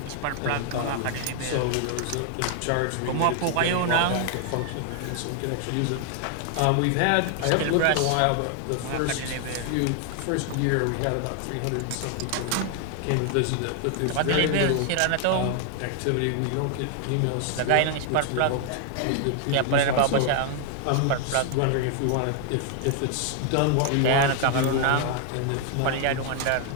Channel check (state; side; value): different; both; correlation 0.00